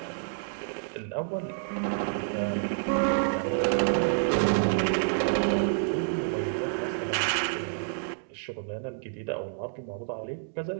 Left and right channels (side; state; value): left; silent; digital silence